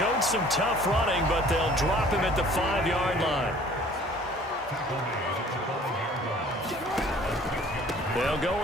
some tough running, but they'll drop him at the 5-yard line. They'll go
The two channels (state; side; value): normal; both; correlation 0.52